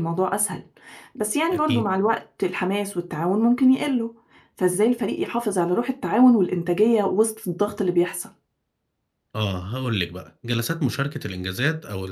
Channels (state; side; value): identical; both; correlation 1.00